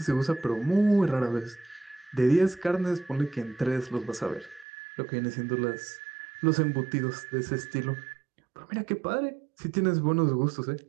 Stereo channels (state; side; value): drops out; left; at 4.7 s